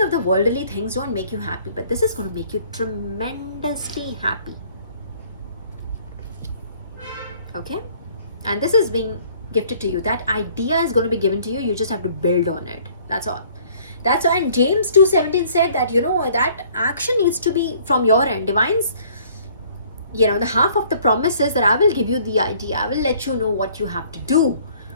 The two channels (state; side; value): inverted; both; correlation -0.57